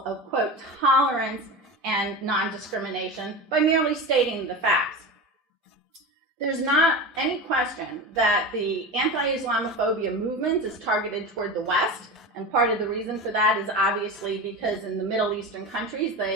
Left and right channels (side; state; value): both; normal; correlation 0.26